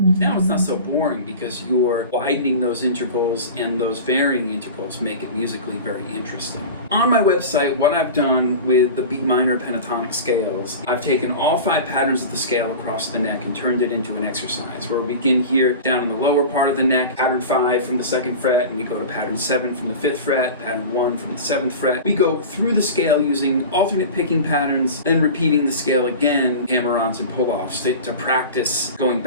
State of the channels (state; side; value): inverted; both; correlation -0.32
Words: now it's not so boring because you're widening those intervals, and those varying intervals make it musically very interesting. On my website, what I've done with the B Minor Pentatonic Scales, I've taken all 5 patterns of the scale across the neck and turned it into an exercise where we begin here down in the lower part of the neck, pattern 5 from the 2nd fret, and we go to pattern 7 from the 5th fret, pattern 1 from the 7th fret. We go through the scale using alternate picking patterns, then repeating the scale again, hammer-ons and pull-offs to practice going